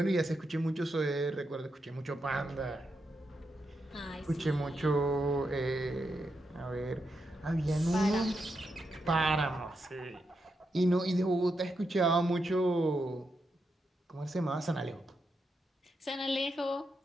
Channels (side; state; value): both; normal; correlation 0.84